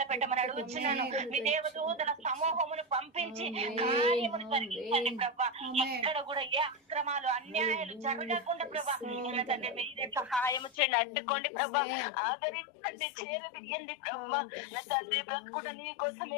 పెట్టమని అడుగుచున్నాను. మీ దేవదూతల సమూహమును పంపించి కార్యమును జరిగించండి ప్రభా. ఎక్కడ కూడా ఏ అక్రమాలు అన్యాయాలు జరగకుండా ప్రభా నా తండ్రి మీరే సహాయము చేయండి. అడ్డుకోండి ప్రభా, ఆదరించండి, చేరదీయండి ప్రభా నా తండ్రి. బ్రతుకుట నీ కోసమే,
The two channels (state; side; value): drops out; right; at 10.8 s